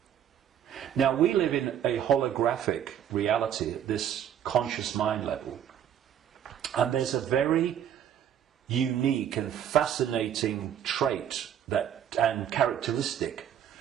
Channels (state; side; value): quieter; left; 9.6 dB